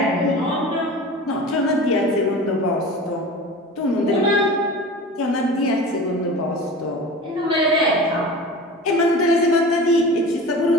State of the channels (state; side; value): normal; both; correlation 0.35